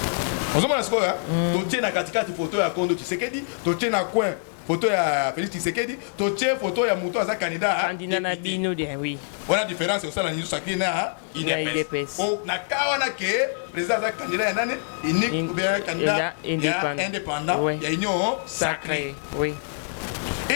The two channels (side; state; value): right; silent; digital silence